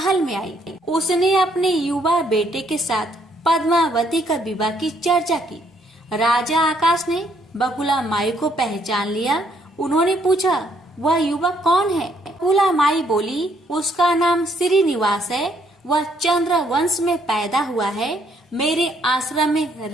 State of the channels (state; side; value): normal; both; correlation 0.69